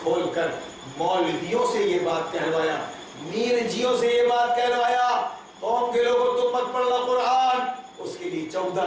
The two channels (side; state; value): both; identical; correlation 1.00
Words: کھول کر مولویوں سے یہ بات کہلوایا، میر جیوں سے یہ بات کہلوایا، قوم کے لوگوں تم مت پڑھنا قرآن، اس کے لیے